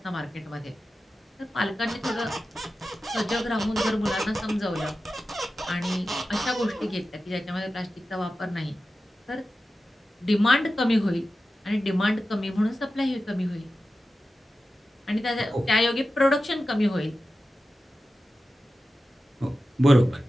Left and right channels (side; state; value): both; normal; correlation 0.93